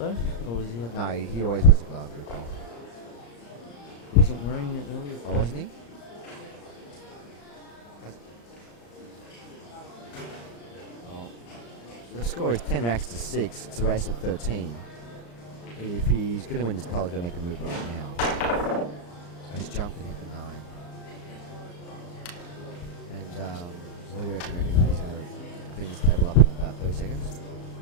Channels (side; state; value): right; late; 34 ms